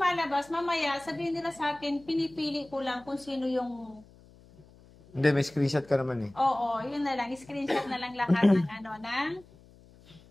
mamaya sabihin nila sa akin, pinipili ko lang kung sino yung... Hindi, may screenshot ka naman eh. Oo, yun na lang. I-screenshot na lang lahat ng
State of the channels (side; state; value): left; noise; hum, 25 dB below the sound